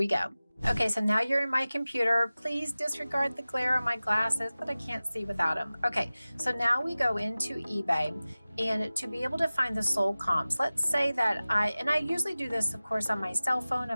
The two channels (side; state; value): both; inverted; correlation -0.97